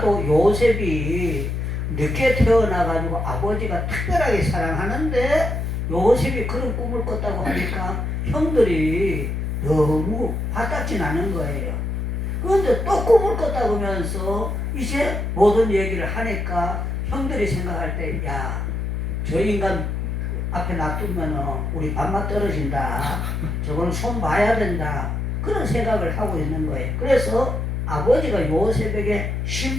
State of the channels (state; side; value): noise; left; hum, 2 dB below the sound